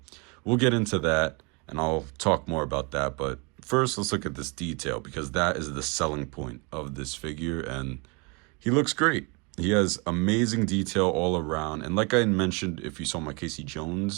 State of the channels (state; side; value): quieter; left; 31.2 dB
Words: we'll get into that and I'll talk more about that, but first let's look at this detail because that is the selling point of this figure, and he looks great. He has amazing detail all around. And like I mentioned, if you saw my Casey